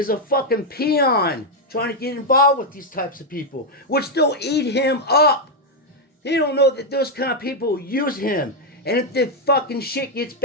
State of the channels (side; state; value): both; normal; correlation 0.01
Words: a fucking peon trying to get involved with these types of people, which they'll eat him up. He don't know that those kind of people use him. And if the fucking shit gets